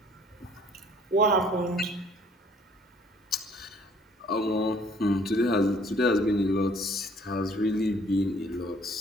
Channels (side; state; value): both; normal; correlation 0.58